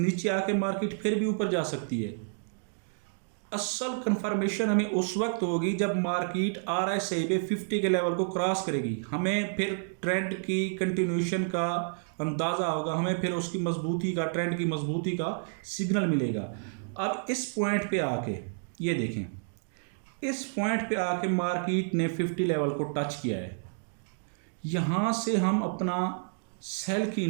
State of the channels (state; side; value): silent; left; digital silence